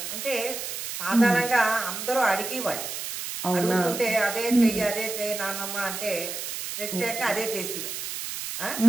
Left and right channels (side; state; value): right; noise; hiss, 6 dB below the sound